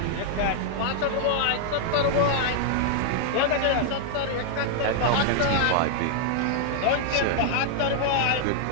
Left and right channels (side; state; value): both; different; correlation 0.00